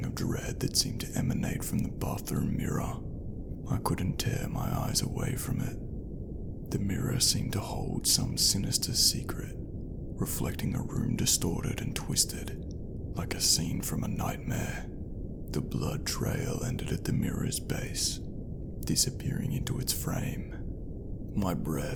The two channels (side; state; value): both; identical; correlation 1.00